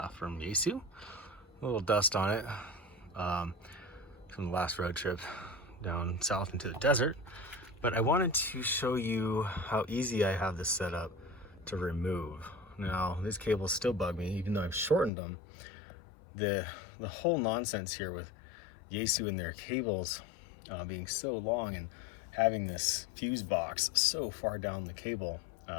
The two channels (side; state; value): right; drops out; at 15.1 s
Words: from Yaesu. A little dust on it from the last road trip down south into the desert. But I wanted to show you how easy I have this set up to remove. Now, these cables still bug me, even though I've shortened them. The whole nonsense here with Yaesu and their cables being so long and having this fuse box so far down the cable.